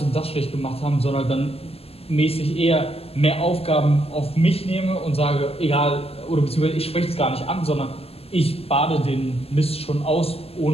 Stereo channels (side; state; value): right; late; 0.29 ms